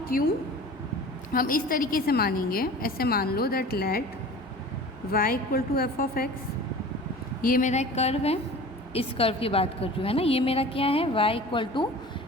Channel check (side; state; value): both; normal; correlation 0.40